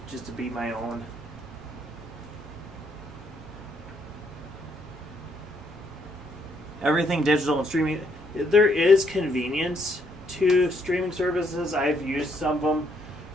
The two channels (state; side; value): normal; both; correlation 0.72